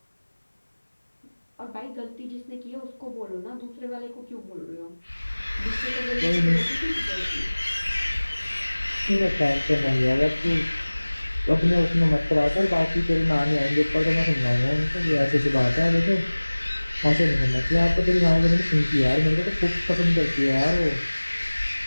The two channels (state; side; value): inverted; both; correlation -1.00